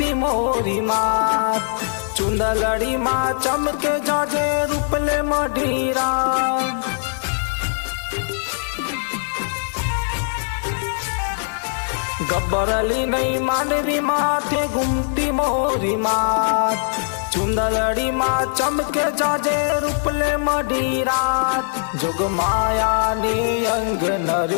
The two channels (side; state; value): right; silent; digital silence